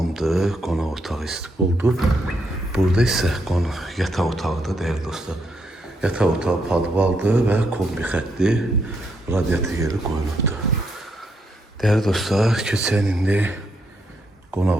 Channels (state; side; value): normal; both; correlation 0.77